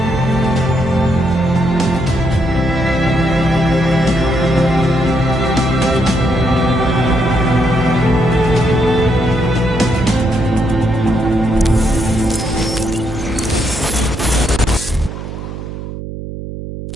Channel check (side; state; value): right; noise; hum, 9 dB below the sound